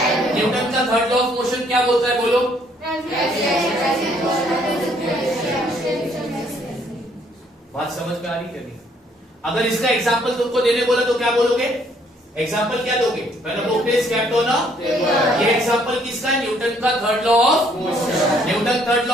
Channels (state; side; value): normal; both; correlation 0.65